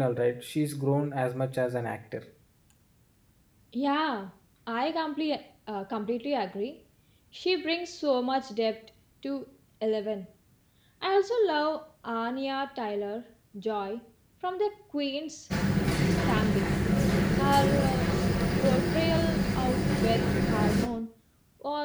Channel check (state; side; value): identical; both; correlation 1.00